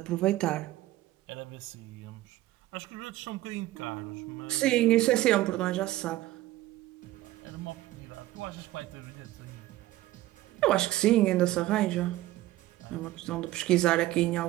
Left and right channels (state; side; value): quieter; left; 16.0 dB